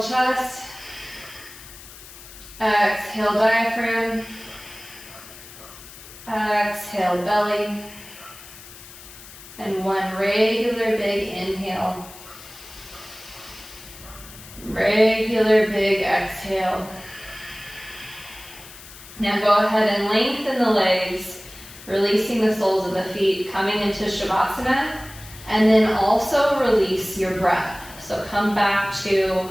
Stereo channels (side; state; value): left; noise; hiss, 17 dB below the sound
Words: chest. Exhale diaphragm. Exhale belly. And one regular big inhale. Regular big exhale. Now go ahead and lengthen the legs, releasing the soles of the feet, coming into Shavasana, and then also release your breath. So come back